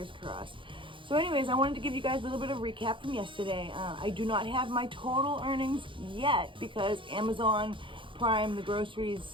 crossed. So anyways, I wanted to give you guys a little bit of recap from yesterday. I do not have my total earnings yet because Amazon Prime, the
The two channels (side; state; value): left; late; 0.25 ms